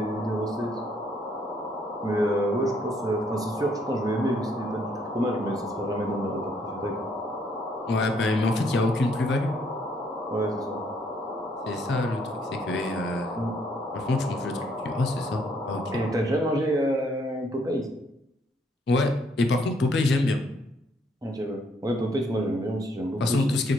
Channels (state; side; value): normal; both; correlation 0.68